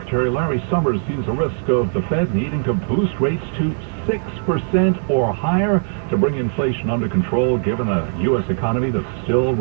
Larry Summers sees a risk of the Fed needing to boost rates to 6% or higher to bring inflation under control, given a U.S. economy that's still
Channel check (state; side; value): silent; left; 65 dB below the other